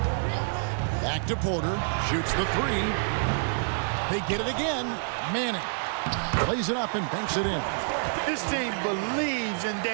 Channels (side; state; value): left; silent; digital silence